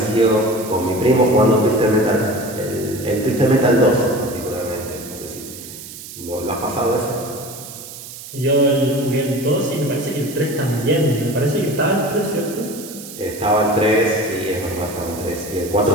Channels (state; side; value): noise; right; hiss, 13 dB below the sound